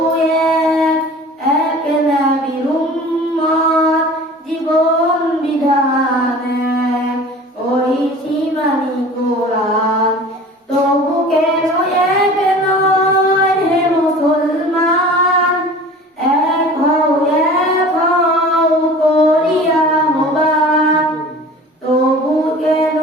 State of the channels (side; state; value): both; normal; correlation 0.42